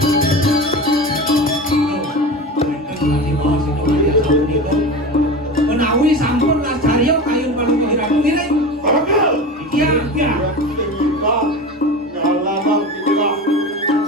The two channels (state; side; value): normal; both; correlation 0.29